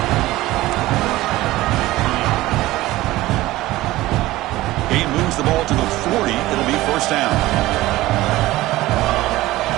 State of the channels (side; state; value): left; quieter; 17.4 dB